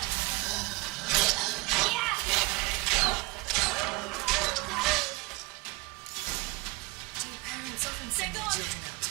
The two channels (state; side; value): quieter; left; 24.6 dB